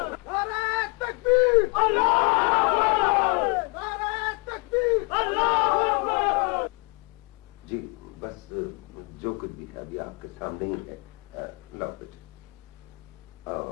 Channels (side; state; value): right; quieter; 32.1 dB